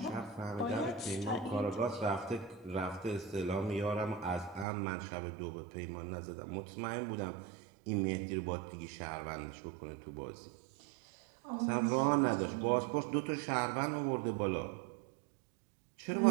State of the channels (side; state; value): left; drops out; at 4.7 s